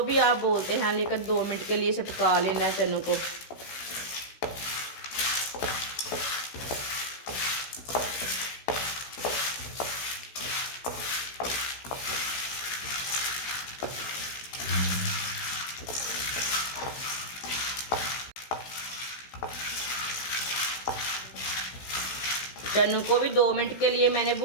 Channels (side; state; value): right; late; 16 ms